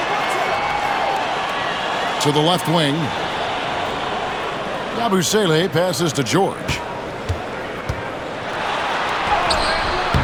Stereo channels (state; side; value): identical; both; correlation 1.00